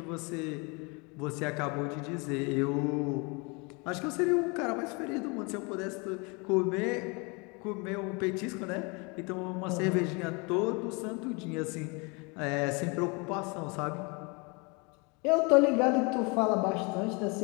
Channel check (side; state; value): right; quieter; 30.2 dB